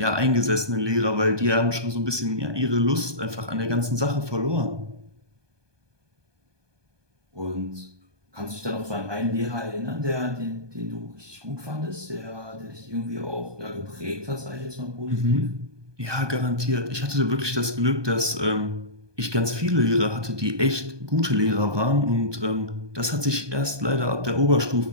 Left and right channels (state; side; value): late; left; 1.2 ms